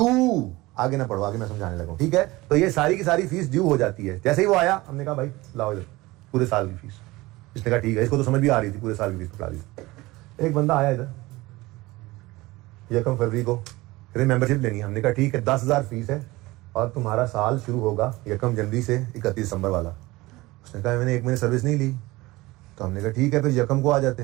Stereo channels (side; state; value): left; quieter; 20.3 dB